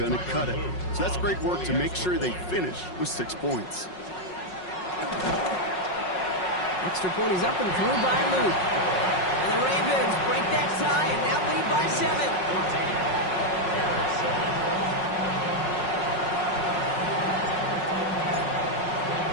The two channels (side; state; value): right; late; 5.5 ms